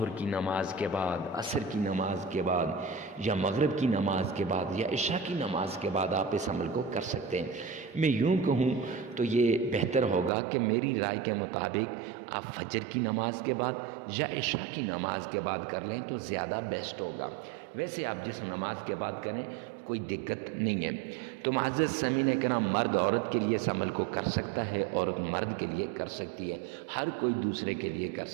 کی نماز کے بعد، عصر کی نماز کے بعد، یا مغرب کی نماز کے بعد، یا عشاء کی نماز کے بعد آپ اس عمل کو کر سکتے ہیں۔ میں یوں کہوں تو یہ بہتر ہوگا کہ میری رائے کے مطابق آپ فجر کی نماز کے بعد یا عشاء کی نماز کے بعد کر لیں تو زیادہ بیسٹ ہوگا۔ ویسے آپ جس نماز کے بعد کریں کوئی دقت نہیں ہے۔ تو معزز سامعین کرام، مرد عورت کے لیے اس عمل کو کر سکتا ہے، عورت مرد کے لیے کر سکتی ہے، ہر کوئی دوسرے کے لیے کر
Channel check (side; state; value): left; drops out; at 10.3 s